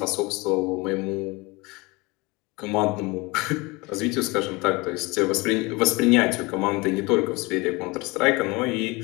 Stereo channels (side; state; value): right; quieter; 24.9 dB